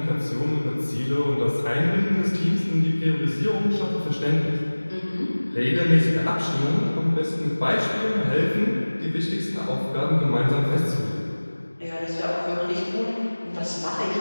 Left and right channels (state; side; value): inverted; both; correlation -1.00